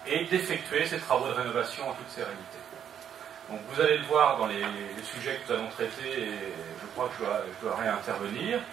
et d'effectuer ces travaux de rénovation en toute sérénité. Donc vous allez le voir dans les sujets que nous allons traiter, et je crois que je dois réintervenir,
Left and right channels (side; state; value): left; quieter; 9.0 dB